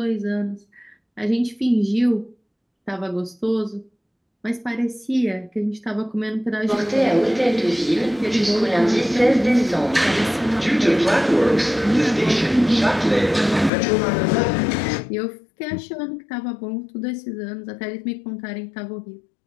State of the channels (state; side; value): drops out; right; at 13.7 s